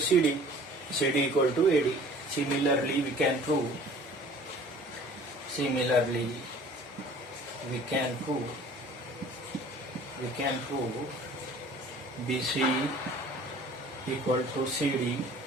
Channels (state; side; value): normal; both; correlation 0.49